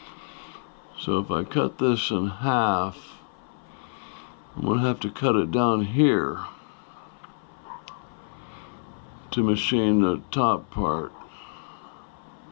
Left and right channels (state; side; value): silent; right; 60 dB below the other